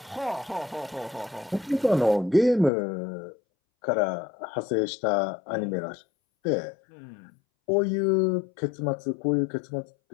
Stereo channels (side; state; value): right; drops out; at 2.7 s